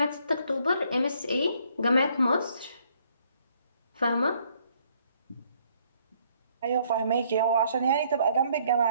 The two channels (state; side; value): inverted; both; correlation -0.66